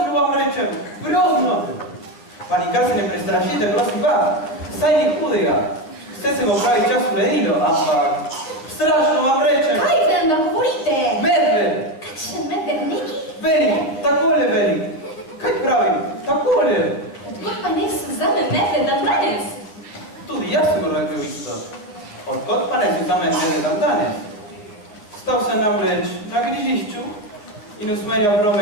vam rečem, grozno! Pa nikar se ne prestrašite, prosim pa, saj ni hudega. Vse se bo pravi čas uredilo, ampak strašno vam rečem. Kaj vam da govorite? Medved! Kakšen medved neki? Veli, takole veli. Kaj pravim? Takole. Odkot pa ne se zame medved dan danes? Tudi jaz sem rekel isto. Odkot pa ne se zame medved dan danes? Stal sem namreč na križišču in usmerjal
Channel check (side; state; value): right; late; 9.7 ms